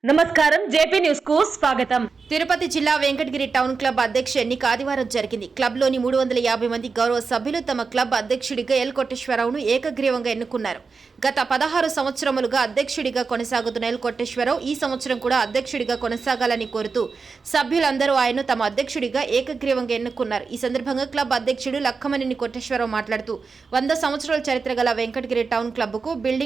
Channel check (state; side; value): quieter; left; 4.8 dB